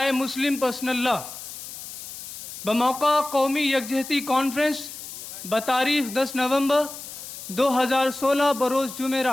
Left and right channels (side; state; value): left; noise; hiss, 11 dB below the sound